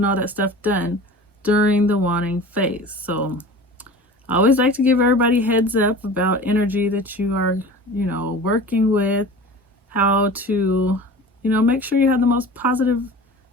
all that stuff done during the wanting phase. So I always like to give everybody heads up about energy that you are, working with, how to, make sure you have the most positive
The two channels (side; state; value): both; normal; correlation 0.38